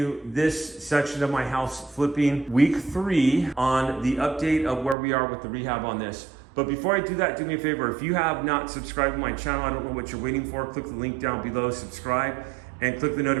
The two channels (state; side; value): drops out; left; at 5.0 s